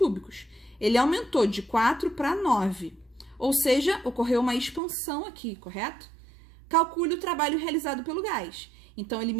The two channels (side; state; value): left; drops out; at 4.8 s